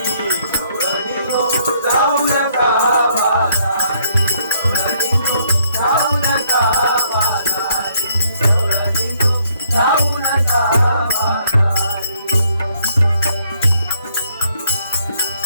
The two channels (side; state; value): both; inverted; correlation -0.68